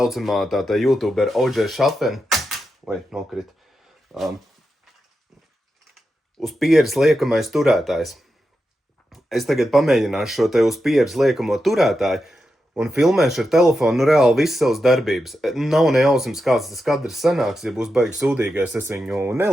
tātā YouTuber OJ Šafen, nokrit, uz pieres liekamais turētājs. Es tagad pamēģināšu šo te uz pieres liekamo turētāju un filmēšu ar telefonu reāli visas savas darbības. Nav nejausmas, kāds tas kadrs sanāks, ja būs baigi sūdīgais, es viņu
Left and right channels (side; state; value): both; normal; correlation 0.88